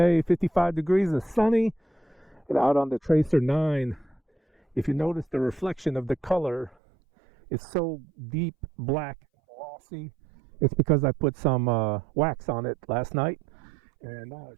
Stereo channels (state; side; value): drops out; left; at 6.8 s